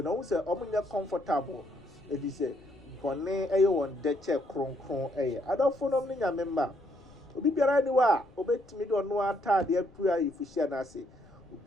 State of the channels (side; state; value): left; noise; rumble, 26 dB below the sound